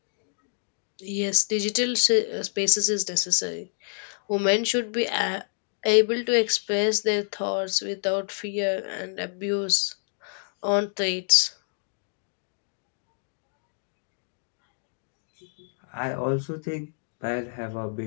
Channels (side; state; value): right; silent; digital silence